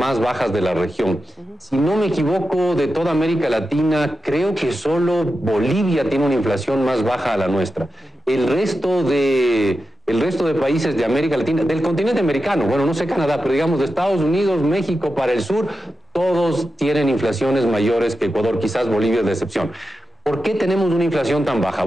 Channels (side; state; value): both; normal; correlation 0.91